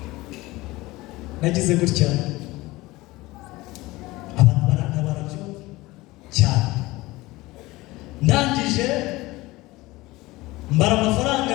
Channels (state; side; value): quieter; right; 20.0 dB